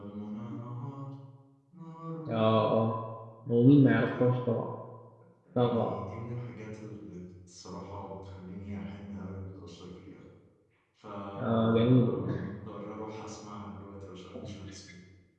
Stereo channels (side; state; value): both; identical; correlation 1.00